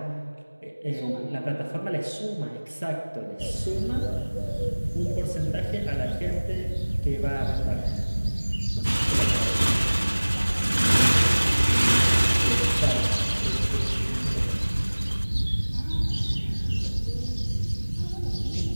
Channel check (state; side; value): inverted; both; correlation -1.00